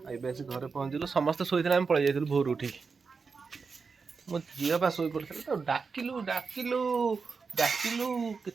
आए घर पहुँचलु समस्ते शोते आम पलि जाइलु भोर उठी मो झील पा शो पड़ा तो डाकिलु डाकिलु डाकिलु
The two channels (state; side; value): quieter; left; 5.0 dB